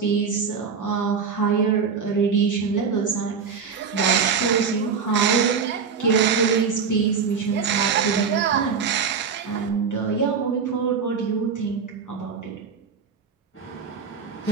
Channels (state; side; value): quieter; left; 6.0 dB